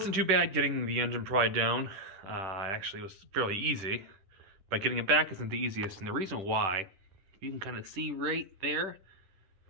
too bad getting the engine pried down. Actually, it was fairly easy, but getting it back isn't the easiest. And the reason why, you can kind of see right there,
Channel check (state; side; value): late; left; 10 ms